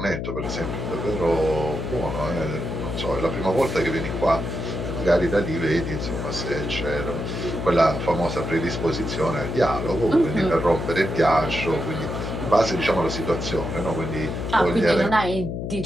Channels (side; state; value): left; noise; hum, 4 dB below the sound